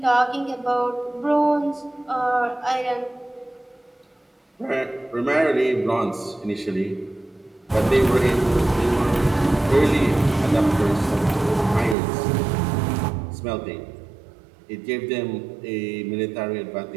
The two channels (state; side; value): drops out; left; at 12.0 s